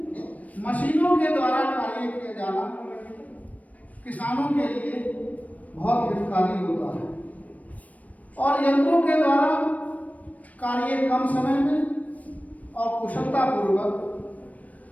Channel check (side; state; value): right; late; 0.071 ms